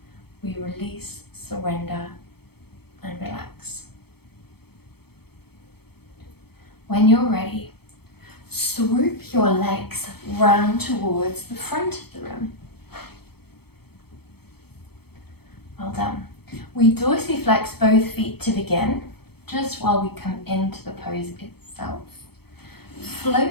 We release, surrender, and relax. When you're ready, swoop your legs round towards the front of the room. Well done. We dorsiflex both feet to begin, just while we come into the pose itself.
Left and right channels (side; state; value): right; late; 0.96 ms